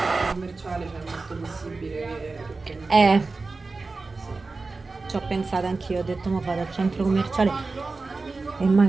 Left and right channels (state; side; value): quieter; left; 3.8 dB